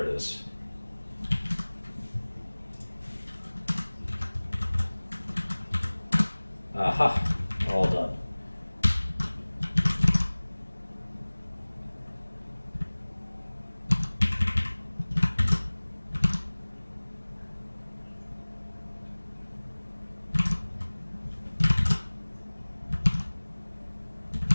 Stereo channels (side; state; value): both; inverted; correlation -1.00